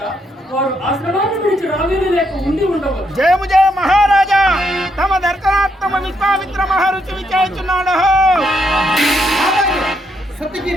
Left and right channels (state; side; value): normal; both; correlation 0.77